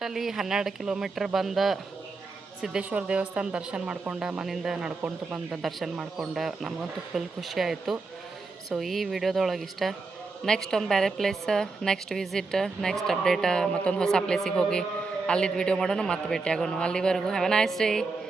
ಅಲ್ಲಿ 12 ಕಿಲೋಮೀಟ್ರ್ ಬಂದ ಸಿದ್ದೇಶ್ವರ ದೇವಸ್ಥಾನ ದರ್ಶನ ಮಾಡ್ಕೊಂಡು ಮನೆಯಿಂದ ನಡ್ಕೊಂಡು ಬಂದು ದರ್ಶನ ಮಾಡ್ಕೊಂಡು ನಮಗಂತೂ ಫುಲ್ ಖುಷಿ ಆಯಿತು. ಸೊ ಈ ವಿಡಿಯೋದೊಳಗೆ ಇಷ್ಟ. ನೆಕ್ಸ್ಟ್ ಒಂದು ಬೇರೆ place, next visit, next update, ಮತ್ತೊಂದು ಹೊಸ ಪ್ಲೇಸಿಗೆ ಹೋಗಿ ಅಲ್ಲಿದ್ದು ವಿಡಿಯೋ ಮಾಡೋಣ, ಮತ್ತೆ ಭೇಟಿ ಆಗೋಣ. ಅಲ್ಲಿವರೆಗೂ have a nice day.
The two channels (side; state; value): left; quieter; 4.0 dB